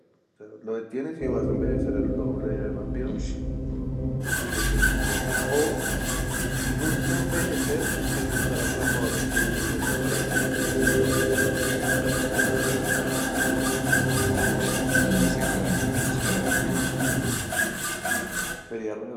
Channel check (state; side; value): identical; both; correlation 1.00